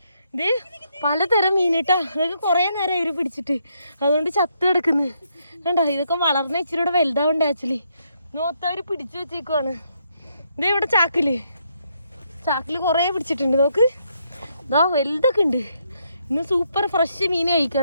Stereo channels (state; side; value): inverted; both; correlation -0.76